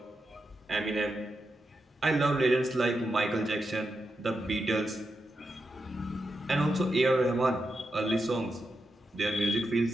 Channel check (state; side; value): normal; both; correlation 0.87